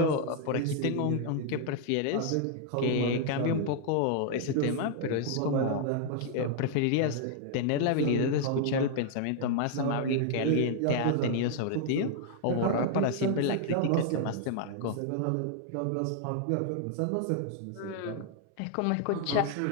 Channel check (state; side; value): different; both; correlation 0.00